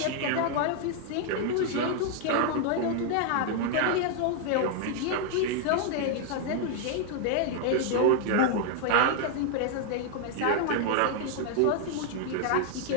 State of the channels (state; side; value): different; both; correlation 0.00